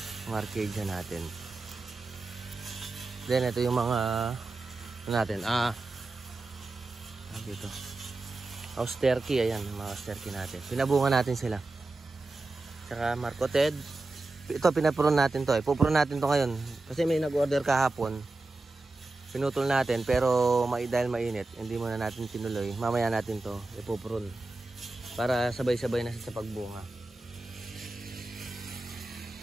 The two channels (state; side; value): quieter; left; 3.2 dB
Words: arcadia natin. Then ito yung mga ano natin. Dito. Austerky, ayan, mga austerky natin. Pinabunga natin sila. Tsaka marcoted. Ito, pinapron natin to. Pupron natin to ngayon. Kasi may nag-order kahapon. Pinutol natin, pero dahil mainit, hindi muna natin tinuloy. Mamaya natin to ipupron. Para sabay-sabay na sa pagbunga.